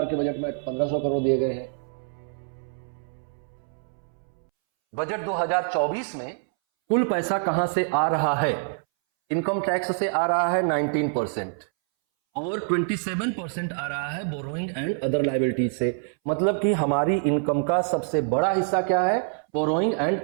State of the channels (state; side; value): silent; left; 61 dB below the other